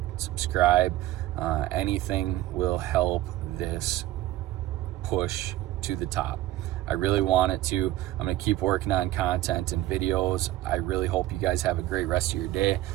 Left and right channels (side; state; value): left; quieter; 15.4 dB